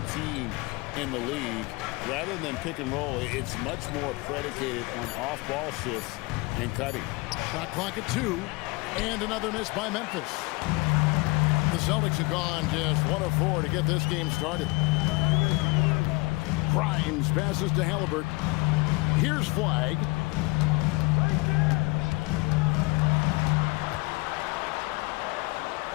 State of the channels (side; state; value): right; quieter; 25.5 dB